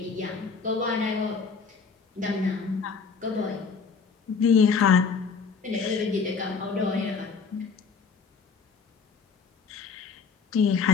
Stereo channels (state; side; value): quieter; right; 5.3 dB